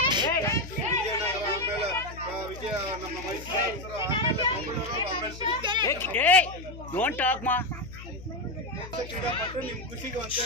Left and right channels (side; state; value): left; noise; hum, 14 dB below the sound